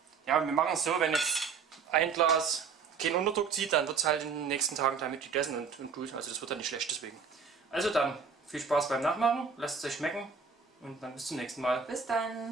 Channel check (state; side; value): quieter; left; 5.7 dB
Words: Ja, wir machen es so, wenn jetzt ein Glas keinen Unterdruck zieht, dann wird es halt in den nächsten Tagen damit gegessen und gut. Also das wird dann nicht schlecht deswegen. Also dann, viel Spaß beim Nachmachen, lasst es euch schmecken und dann bis zum nächsten Mal. Bis